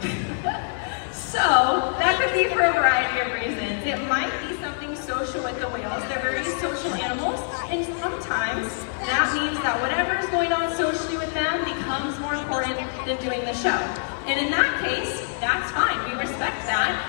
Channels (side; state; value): right; silent; digital silence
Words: So that could be for a variety of reasons. It might be something social with the whales. They're very social animals, and sometimes that means that whatever is going on socially with them becomes more important than doing the show. And in that case, that's fine. We respect